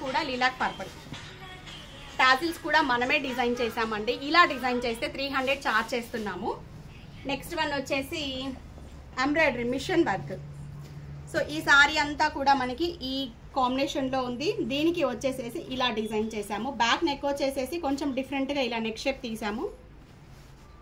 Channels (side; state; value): both; identical; correlation 1.00